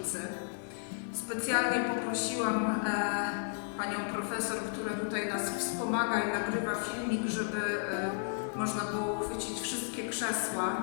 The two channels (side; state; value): right; silent; digital silence